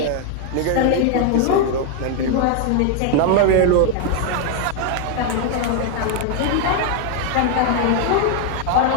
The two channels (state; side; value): different; both; correlation 0.00